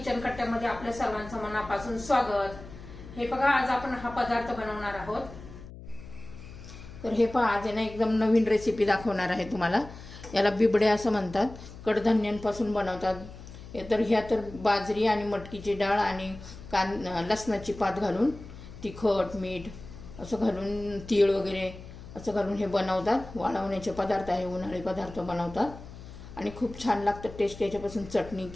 कट्ट्यामध्ये आपल्या सर्वांचं मनापासून स्वागत. हे बघा, आज आपण हा पदार्थ बनवणार आहोत. तर हे पहा, आज ना एकदम नवीन रेसिपी दाखवणार आहे तुम्हाला. याला बिबडे असं म्हणतात. कडधान्यांपासून बनवतात. तर ह्या तर बाजरी आणि मटकीची डाळ आणि लसणाची पात घालून तिखट मीठ असं घालून तीळ वगैरे असं घालून हे बनवतात. वाळवण्याचे पदार्थ आहे, उन्हाळी पदार्थ बनवतात आणि खूप छान लागतं टेस्ट. याच्यापासून चटणी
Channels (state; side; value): noise; left; hum, 15 dB below the sound